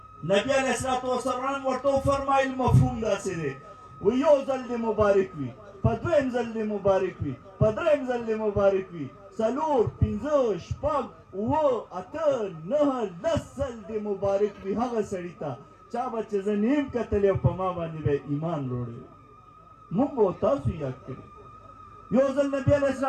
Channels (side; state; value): both; identical; correlation 1.00